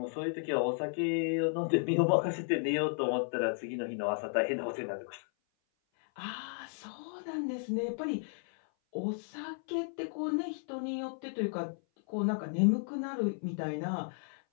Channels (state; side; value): silent; right; 55 dB below the other